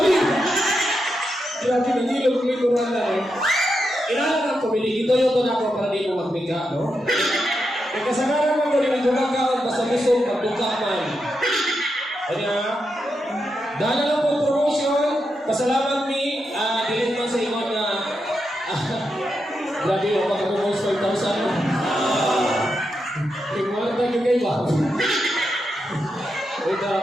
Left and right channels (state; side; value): normal; both; correlation 0.85